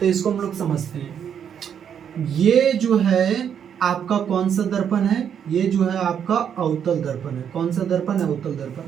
इसको हम लोग समझते हैं। ये जो है आपका कौन सा दर्पण है, ये जो है आपका अवतल दर्पण है। कौन सा दर्पण है, अवतल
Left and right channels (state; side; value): quieter; left; 8.3 dB